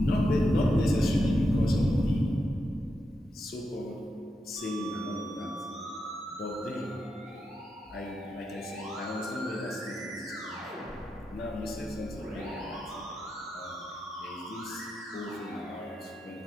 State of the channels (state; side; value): normal; both; correlation 0.86